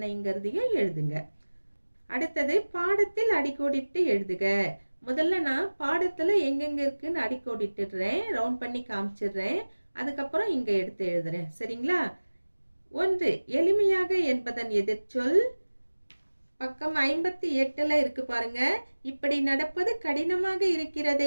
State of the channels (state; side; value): inverted; both; correlation -1.00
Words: எழுதுங்க. அடுத்தது பாடத்தில் அடிக்கோடிட்டு எழுதுக. முதல்ல நான் பாடத்துல எங்கெங்க இருக்குன்னு அடிக்கோடிட்டுறேன், ரவுண்ட் பண்ணி காமிச்சிடுறேன். அதுக்கப்புறம் இங்க எடுத்து எழுதுறேன். சரிங்களா? 1. எளிமையாக என்பதன் எதிர்ச்சொல். பக்கம் 58ல இருக்கு பாருங்க. இப்படி நடப்பது கடினமாக